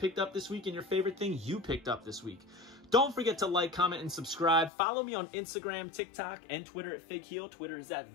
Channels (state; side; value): drops out; right; at 4.7 s